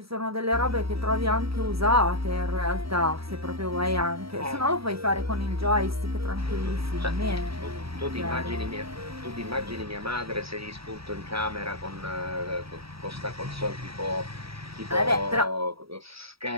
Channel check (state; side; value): late; left; 0.76 ms